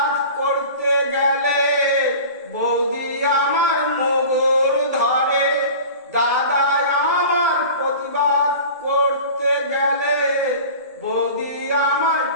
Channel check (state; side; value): inverted; both; correlation -0.38